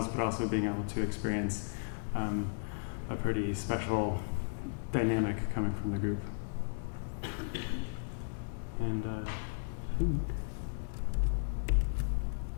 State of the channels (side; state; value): right; silent; digital silence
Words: but also being able to experience a pretty special dynamic coming from the group. And I think